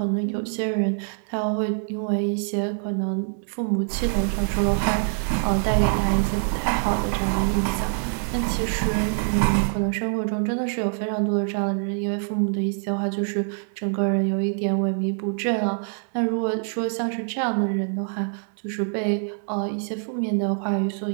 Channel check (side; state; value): left; silent; digital silence